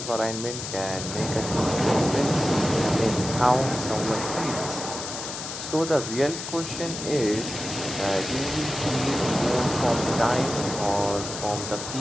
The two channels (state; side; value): noise; left; hiss, 7 dB below the sound